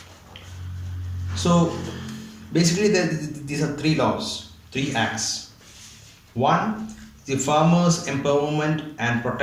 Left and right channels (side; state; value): both; identical; correlation 1.00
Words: So basically these are three laws, three acts. One, the Farmers Empowerment and